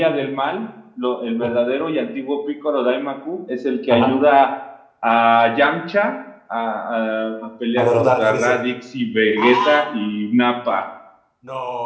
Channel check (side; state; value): both; identical; correlation 1.00